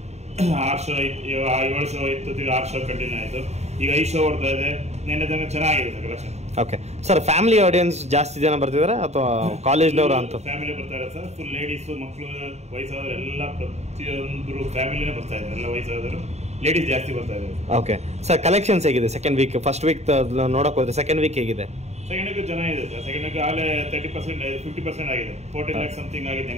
6 ಶೋ ಇತ್ತು, 7 ಶೋ ಇತ್ತು, 6 ಶೋ ಕಂಟಿನ್ಯೂ ಆಯಿತು. ಈಗ 5 ಶೋ ಓಡ್ತಾ ಇದೆ. ನಿನ್ನೆ ತನಕ ಚೆನ್ನಾಗಿದೆ sir collection. Okay sir, family audience ಜಾಸ್ತಿ ಜನ ಬರ್ತಿದಾರೆ ಅಥವಾ ಕಾಲೇಜ್ನವರು ಅಂತ? ಫ್ಯಾಮಿಲಿ ಬರ್ತಾರೆ ಸರ್. ಫುಲ್ ಲೇಡೀಸು, ಮಕ್ಕಳು, ವಯಸ್ಸಾದವರು ಎಲ್ಲ ಪ್ರತಿಯೊಂದು ಫ್ಯಾಮಿಲಿನೇ ಬರ್ತಾ ಇದ್ದಾರೆ. ಎಲ್ಲ ವಯಸ್ಸಾದವರು, ಲೇಡೀಸ್ ಜಾಸ್ತಿ ಬರ್ತಾ ಇದ್ದಾರೆ. ಓಕೆ ಸರ್, ಕಲೆಕ್ಷನ್ಸ್ ಹೇಗಿದೆ ಸೆಕೆಂಡ್ ವೀಕ್? ಫಸ್ಟ್ ವೀಕ್ ನೋಡಕ್ ಹೋದ್ರೆ ಸೆಕೆಂಡ್ ವೀಕ್ ಹೇಗಿದೆ? ಸೆಕೆಂಡ್ ವೀಕ್ ಚೆನ್ನಾಗಿದೆ ಸರ್. ಸೆಕೆಂಡ್ ವೀಕ್ ಆಗಲೇ 30% 50% ಆಗಿದೆ. 14 lakhs ಸಮಥಿಂಗ್ ಆಗಿದೆ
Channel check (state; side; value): late; left; 0.32 ms